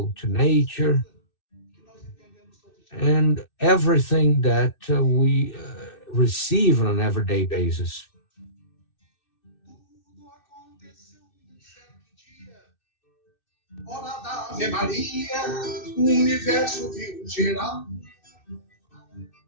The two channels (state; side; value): late; right; 2.6 ms